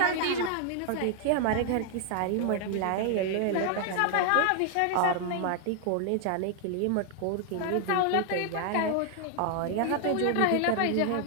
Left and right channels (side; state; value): both; different; correlation 0.00